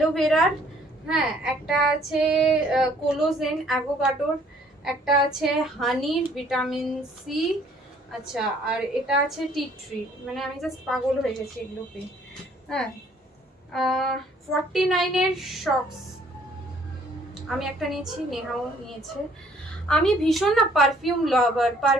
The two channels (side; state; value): both; normal; correlation 0.60